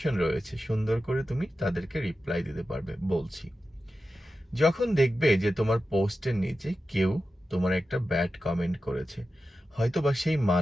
রয়েছে, সুন্দর করে তুমি তাদেরকে রিপ্লাই দিতে পারবে। বলছি, যখন দেখবে যে তোমার পোস্টের নিচে কেউ তোমার একটা ব্যাড কমেন্ট করেছে, হয়তো বা সেই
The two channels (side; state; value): both; normal; correlation 0.92